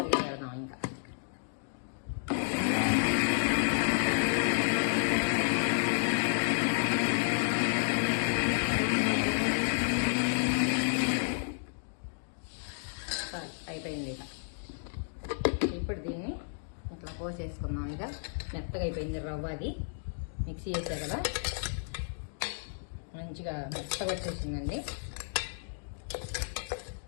పెడదాం ఇంకా. అయిపోయింది ఇక. ఇప్పుడు దీన్ని ఇట్లా పోసేసుకుందాం. ఇక మెత్తగా అయిపోయింది రవ్వ, అది మిక్సీ చేసా కదా, మంచిగా మెత్తగా వచ్చేసిందండి.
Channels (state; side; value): silent; right; digital silence